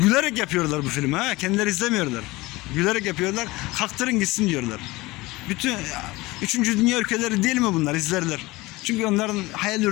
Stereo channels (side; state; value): right; quieter; 21.0 dB